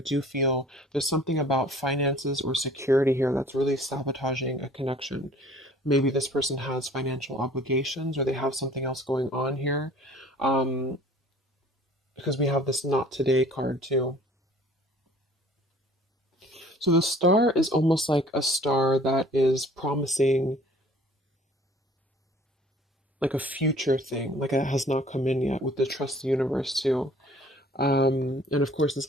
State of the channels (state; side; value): normal; both; correlation 0.51